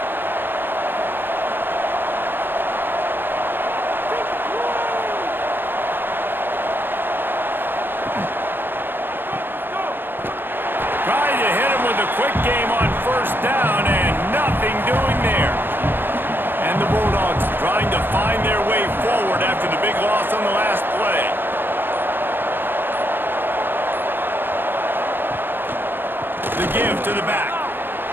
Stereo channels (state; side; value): late; left; 0.099 ms